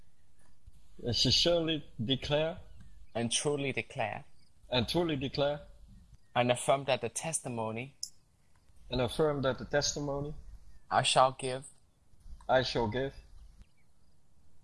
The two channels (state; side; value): identical; both; correlation 1.00